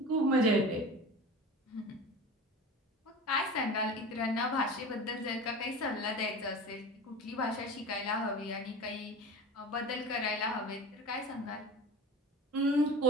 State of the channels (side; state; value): both; normal; correlation 0.34